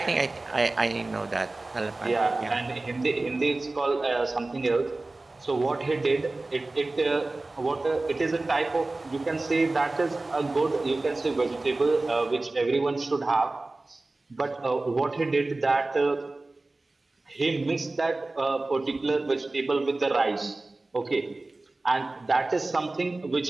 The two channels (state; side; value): quieter; left; 3.1 dB